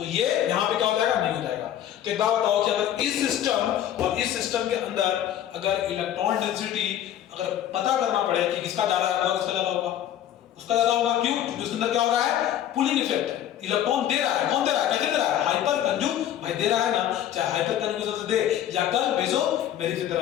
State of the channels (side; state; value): right; quieter; 11.2 dB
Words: ये यहाँ पे क्या हो जाएगा, नहीं हो जाएगा। तो एक बात बताओ कि अगर इस सिस्टम और इस सिस्टम के अंदर अगर इलेक्ट्रॉन डेंसिटी अगर पता करना पड़े कि किसका ज्यादा होगा, किसका ज्यादा होगा, उसका ज्यादा होगा, क्यों, क्योंकि उसके अंदर क्या हो रहा है, पुलिंग इफेक्ट है, इलेक्ट्रॉन दे रहा है, कौन दे रहा है, कैसे दे रहा है, हाइपर कंजुग भाई दे रहा है ना, चाहे हाइपर कंजुगेशन से दे या कल बेजो मेरी से दे